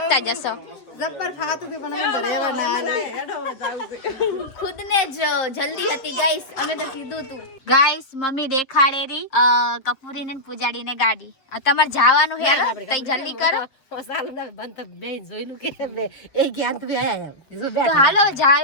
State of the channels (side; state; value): right; late; 7.3 ms